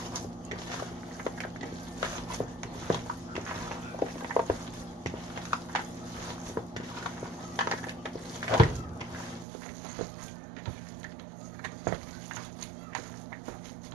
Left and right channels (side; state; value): left; drops out; at 9.5 s